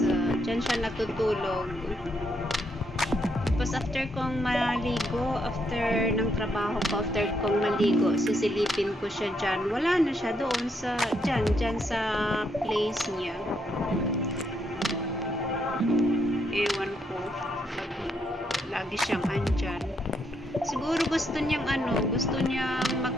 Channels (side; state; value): both; normal; correlation 0.77